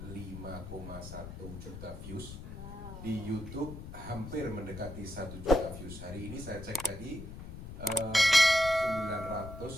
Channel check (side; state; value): left; noise; rumble, 11 dB below the sound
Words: 5,1 juta views. Di YouTube hampir mendekati 1 juta views. Hari ini saya cek tadi